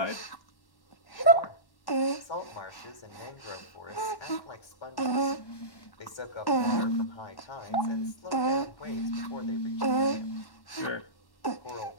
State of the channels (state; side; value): late; right; 1.1 ms